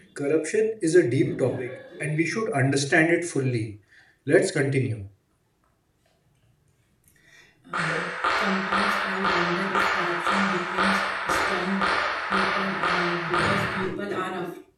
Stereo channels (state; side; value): identical; both; correlation 1.00